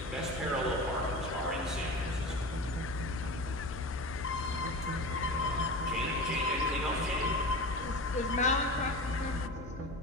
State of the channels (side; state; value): left; noise; hum, 12 dB below the sound